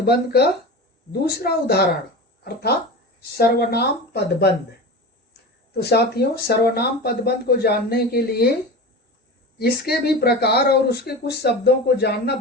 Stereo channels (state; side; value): normal; both; correlation 0.29